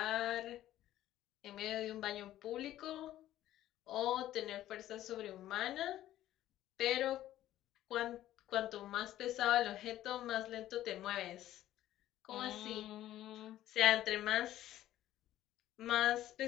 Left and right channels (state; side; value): quieter; right; 13.5 dB